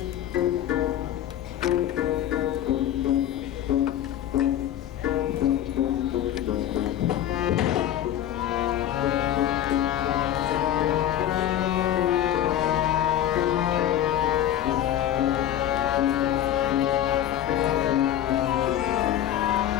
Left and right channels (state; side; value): quieter; right; 11.5 dB